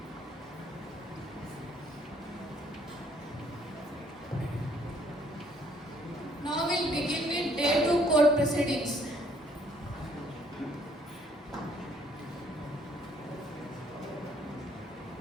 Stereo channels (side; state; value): both; normal; correlation 0.64